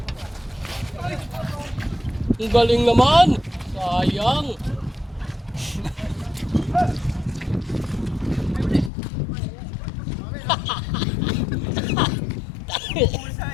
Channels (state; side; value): drops out; right; at 8.9 s